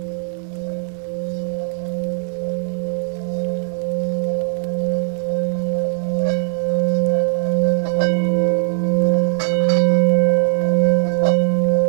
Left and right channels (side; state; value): left; silent; 66 dB below the other